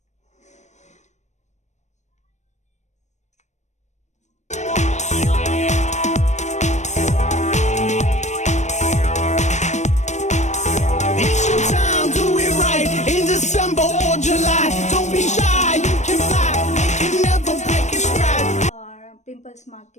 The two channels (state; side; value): late; right; 0.34 ms